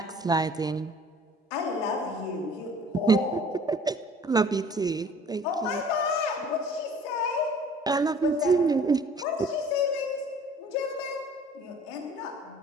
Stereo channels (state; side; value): normal; both; correlation 0.50